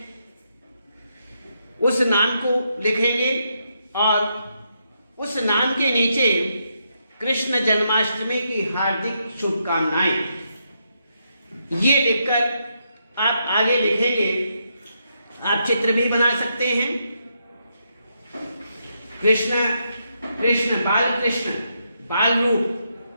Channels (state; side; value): inverted; both; correlation -0.80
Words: उस नाम को लिखेंगे और उस नाम के नीचे कृष्ण जन्माष्टमी की हार्दिक शुभकामनाएं, ये लिखकर आप आगे लिखेंगे। आप चित्र भी बना सकते हैं, कृष्ण कृष्ण बाल